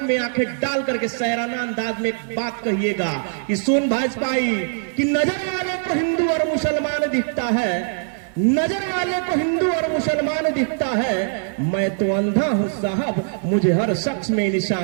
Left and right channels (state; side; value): silent; left; 64 dB below the other